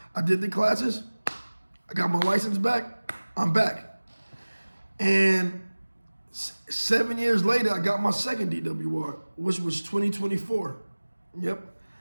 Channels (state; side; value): inverted; both; correlation -1.00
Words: I did the classes. I got my license back. I'm back. And 7 years later, I got my second DWI, which was 2024. Yep,